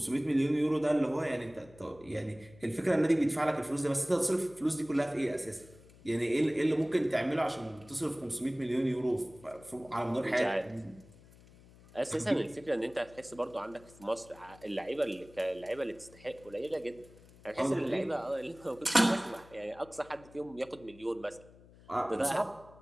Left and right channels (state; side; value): noise; left; hum, 23 dB below the sound